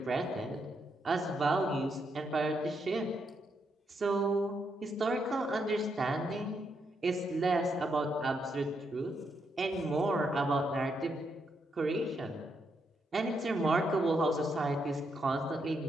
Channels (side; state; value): both; normal; correlation 0.79